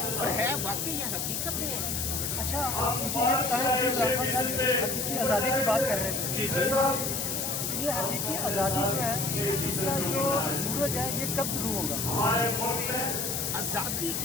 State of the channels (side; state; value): left; noise; hiss, 1 dB below the sound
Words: اور ہے واقعی یہ حقیقت میں ہے. اچھا آپ مجھے یہ بتائیں کہ حقیقی آزادی کی بات کر رہے تھے. جی یہ حقیقی آزادی جو ہے اس کا جو سورج ہے یہ کب شروع ہوگا؟ آزادی